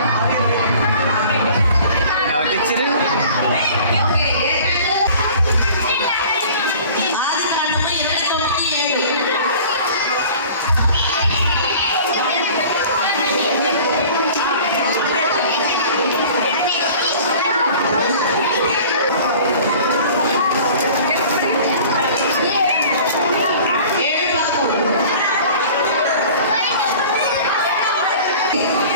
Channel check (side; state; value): both; inverted; correlation -0.45